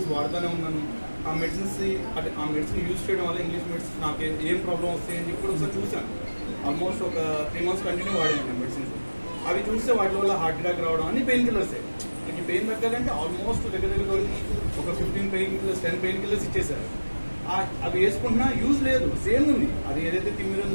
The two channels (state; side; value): inverted; both; correlation -1.00